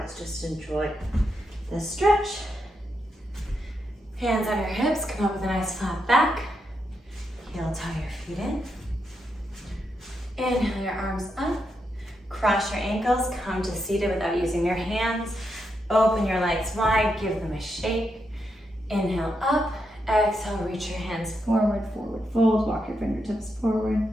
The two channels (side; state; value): both; normal; correlation 0.83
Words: just enjoy the stretch. Hands on your hips, come up with a nice flat back. Heel toe your feet in. Inhale your arms up. Cross your ankles, come to seated without using your hands. Open your legs wide, give them a shake. Inhale up, exhale, reach your hands forward, forward fold, walk your fingertips forward.